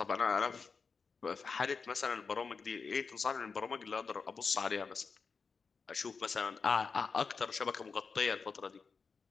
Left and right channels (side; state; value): right; quieter; 5.1 dB